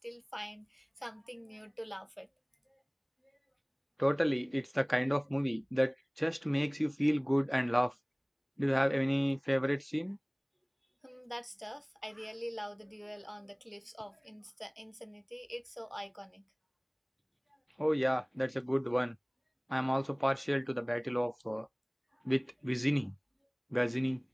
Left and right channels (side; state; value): both; identical; correlation 1.00